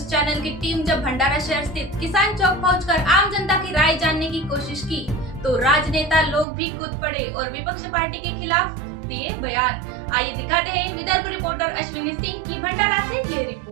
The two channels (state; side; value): drops out; left; at 6.5 s